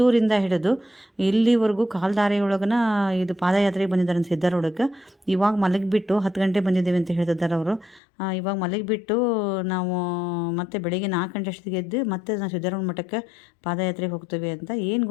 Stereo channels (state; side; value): drops out; right; at 8.0 s